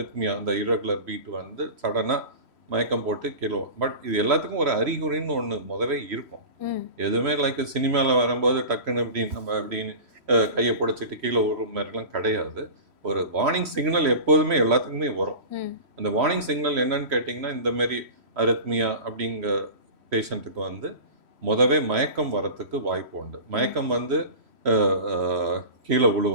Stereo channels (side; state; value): left; late; 3.1 ms